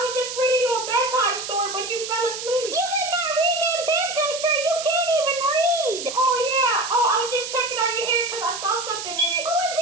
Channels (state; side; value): noise; right; hiss, 7 dB below the sound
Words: was just reading you a bedtime story, but you fell asleep. You did not read me a bedtime story. You can't even read. Oh, yeah. Oh, I was just checking out your hair because I saw something in it. What was